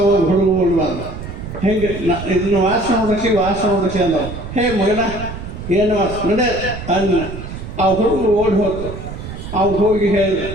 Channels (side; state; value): right; noise; rumble, 9 dB below the sound